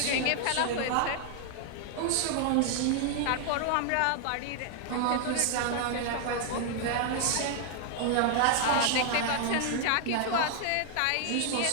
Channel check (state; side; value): different; both; correlation 0.00